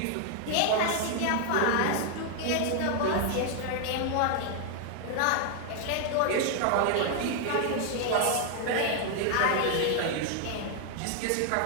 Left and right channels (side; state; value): both; different; correlation 0.00